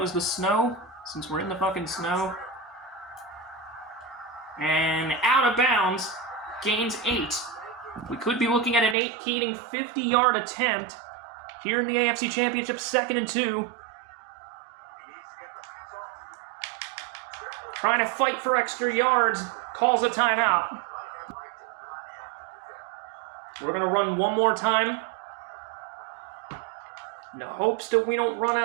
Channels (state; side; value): drops out; left; at 9.0 s